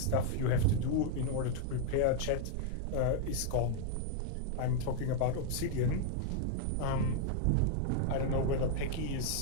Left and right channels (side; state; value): both; different; correlation -0.01